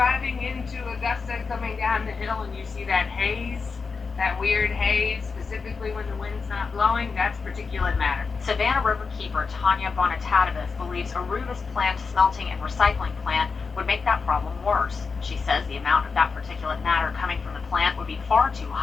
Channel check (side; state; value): right; quieter; 4.9 dB